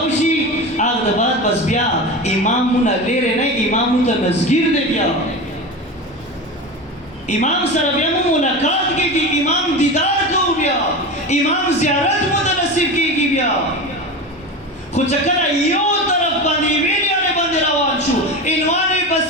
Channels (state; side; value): normal; both; correlation 0.26